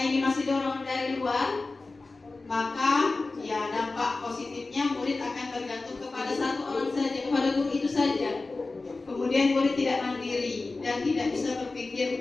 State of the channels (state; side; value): quieter; right; 3.5 dB